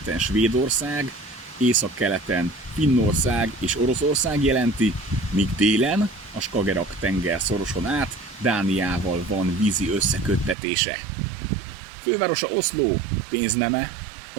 Svédország, északkeleten Finnország és Oroszország jelenti, míg délen a Skagerrak-tenger szoroson át Dániával van vízi összeköttetése. Fővárosa Oszló, pénzneme a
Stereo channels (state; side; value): drops out; left; at 10.6 s